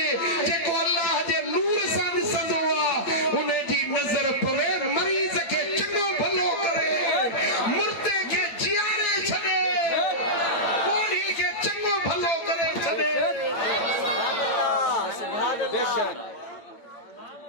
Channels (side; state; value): right; late; 8.9 ms